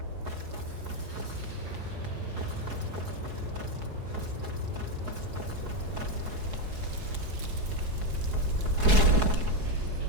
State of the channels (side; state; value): left; late; 4.7 ms